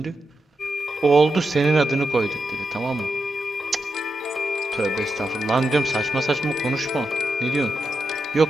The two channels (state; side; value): normal; both; correlation 0.87